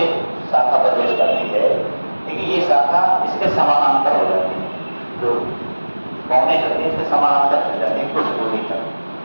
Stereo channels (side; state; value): both; inverted; correlation -1.00